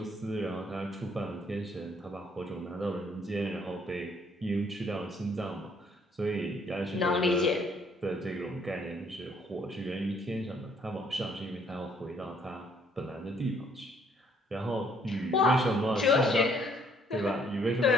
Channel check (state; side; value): normal; both; correlation 0.65